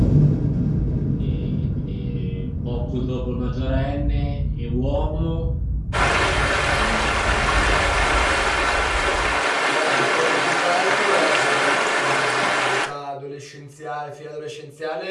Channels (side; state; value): both; identical; correlation 1.00